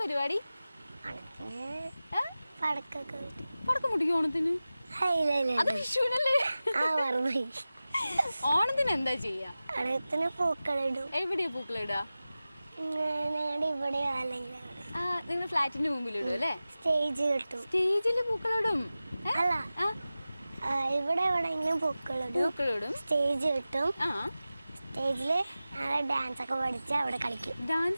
പരിപാടി? പടക്കം പൊട്ടിക്കും ഓണത്തിന്? അത് വിഷുവിനല്ലേ? ഓണത്തിന് എന്താ ചെയ്യാ? പൂക്കളിടും. എവിടെയാ പൂക്കളിടാ? നിങ്ങൾ ഫ്ലാറ്റിന്റെ മുമ്പിൽ ഇടും അല്ലേ? സ്റ്റേജ് കിട്ടും. സ്റ്റേജില് പൂക്കളിടും? അല്ല, ഇവിടെ എവിടെയെങ്കിലും പൂക്കളിടും. സ്റ്റേജ് കിട്ടും. സ്റ്റേജില് ഡാൻസ് ഒക്കെ പഠിച്ച് അവിടെ കളിക്കും.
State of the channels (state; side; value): inverted; both; correlation -0.96